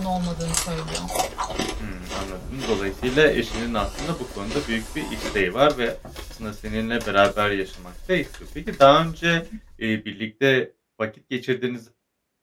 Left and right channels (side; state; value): both; identical; correlation 1.00